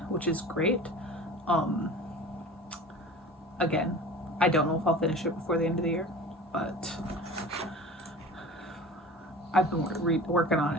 which is great. Again, I don't know if I'll finish it before the end of the year, but I've been working on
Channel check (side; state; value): both; normal; correlation 0.38